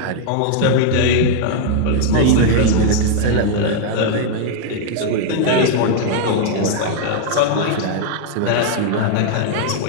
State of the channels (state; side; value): different; both; correlation 0.00